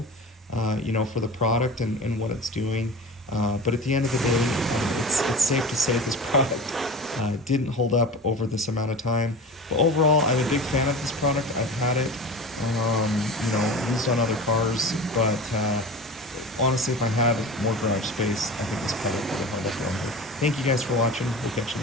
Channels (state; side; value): normal; both; correlation 0.32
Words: for the product and what it's doing. But at the end of the day, it's safe to say this product didn't hold up over this amount of time. But overall, I'm a big fan of this product. I've had it, used on other cars, but honestly, if I had more garage space, I think this product would have held up longer. Thank you guys for watching. We'll catch you